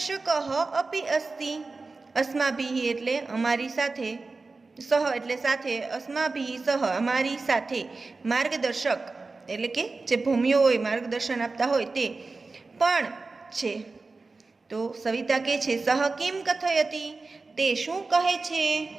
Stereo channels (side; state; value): left; quieter; 3.8 dB